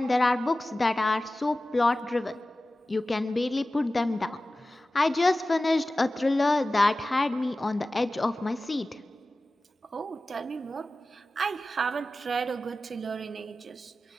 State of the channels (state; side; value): normal; both; correlation 0.96